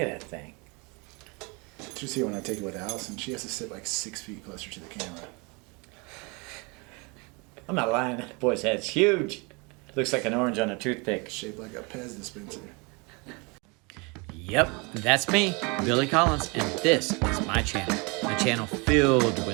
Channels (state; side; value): quieter; left; 29.6 dB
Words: at that thing. Did you see when I take it with Allison? She has to sit like 6 feet closer to the camera. I'm not lying. That boy's head's huge. Looks like an orange on a toothpick. Shaped like a Pez dispenser. Yep, that's me, Billy Collins, and this is my channel. A channel filled